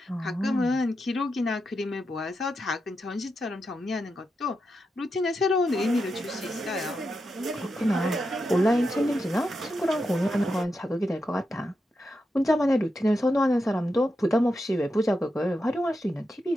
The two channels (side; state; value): both; normal; correlation 0.87